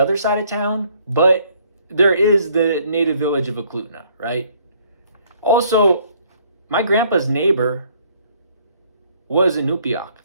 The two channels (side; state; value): both; inverted; correlation -0.63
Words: side of town, but there is the native village of Eklutna, right? Also, my grandpa's neighbor was Inupiaq.